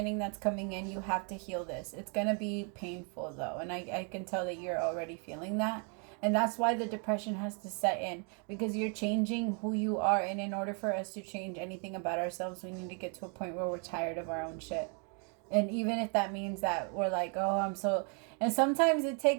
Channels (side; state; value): left; quieter; 38.4 dB